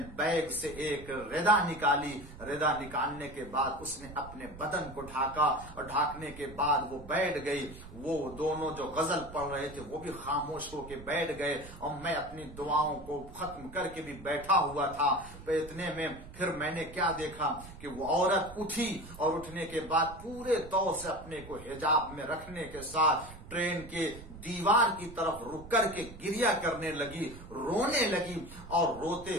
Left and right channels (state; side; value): noise; right; rumble, 16 dB below the sound